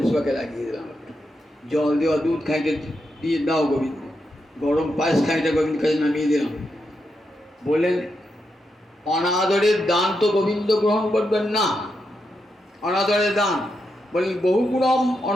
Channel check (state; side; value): normal; both; correlation 0.84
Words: সেবাকে লাগিয়ে দিলাম। জল দেওয়া দুধ খাইতে দিয়ে দাও গোবিন্দ, গরম পায়েস খাইতে গোবিন্দ কাছে নামিয়ে দিলাম। বললেন অনাদরের দান তো গোবিন্দ গ্রহণ করবেন না। অনাদরের দান বললেন বহুগুণম